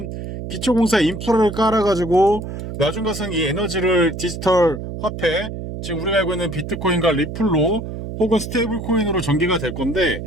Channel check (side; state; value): right; noise; hum, 8 dB below the sound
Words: 기초공사 인프라를 깔아가지고 나중 가서는 이 에너지를 디지털 화폐, 지금 우리가 알고 있는 비트코인과 리플로 혹은 스테이블 코인으로 전개가 될 건데,